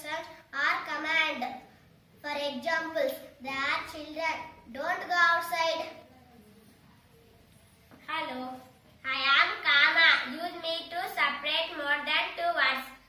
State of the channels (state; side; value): identical; both; correlation 1.00